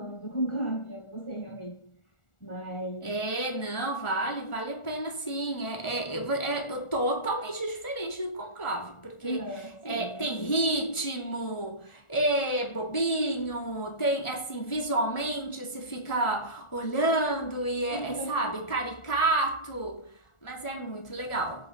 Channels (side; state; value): right; late; 1.4 ms